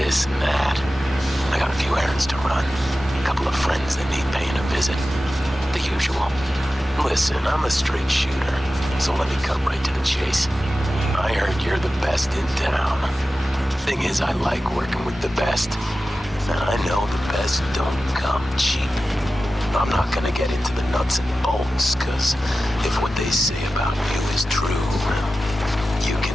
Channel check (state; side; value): normal; both; correlation 0.94